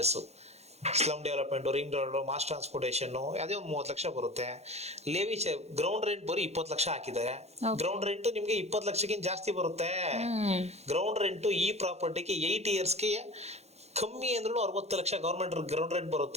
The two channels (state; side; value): late; left; 0.31 ms